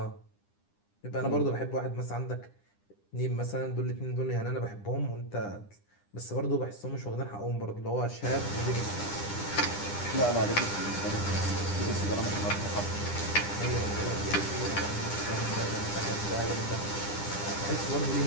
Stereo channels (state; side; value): late; right; 9.9 ms